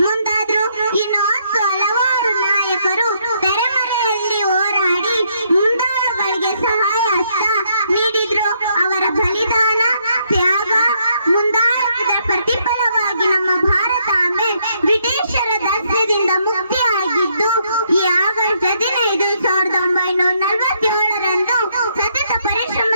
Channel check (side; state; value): both; inverted; correlation -0.72